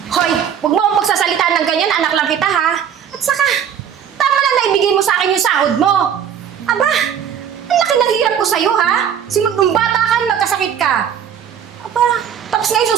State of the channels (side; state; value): left; quieter; 8.6 dB